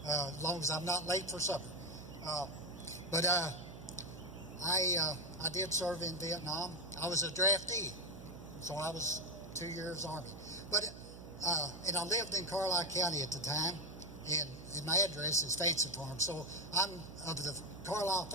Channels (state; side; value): noise; right; hum, 14 dB below the sound